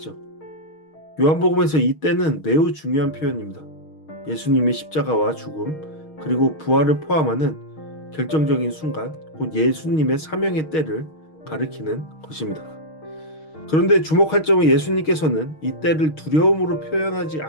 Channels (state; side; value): late; right; 6.4 ms